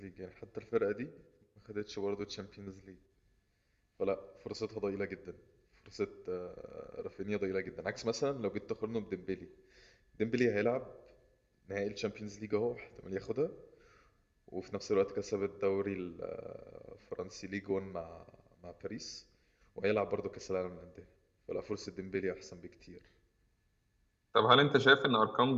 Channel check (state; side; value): identical; both; correlation 1.00